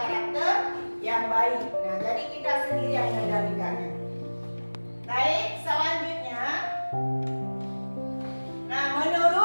yang baik. Nah, jadi kita sendiri yang mengendalikannya. Baik, selanjutnya. Nah,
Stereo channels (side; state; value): both; inverted; correlation -1.00